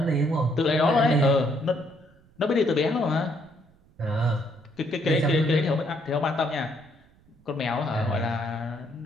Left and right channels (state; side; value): noise; right; rumble, 30 dB below the sound